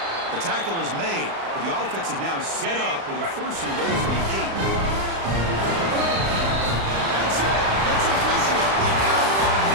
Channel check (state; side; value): late; left; 36 ms